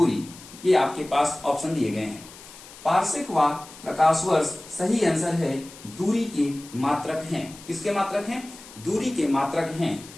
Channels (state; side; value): noise; left; hiss, 18 dB below the sound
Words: ये आपके पास ऑप्शन दिए गए हैं। पार्सेक व प्रकाश वर्ष सही आंसर है, दूरी के मात्रक हैं। किसके मात्रक हैं? दूरी के मात्रक हैं।